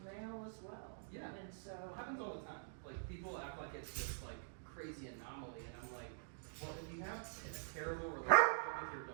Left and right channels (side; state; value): left; silent; digital silence